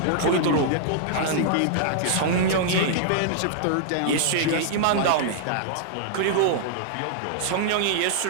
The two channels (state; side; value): different; both; correlation -0.01